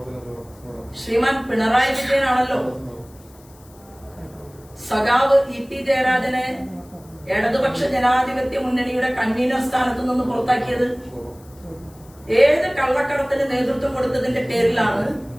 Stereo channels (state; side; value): noise; left; hiss, 27 dB below the sound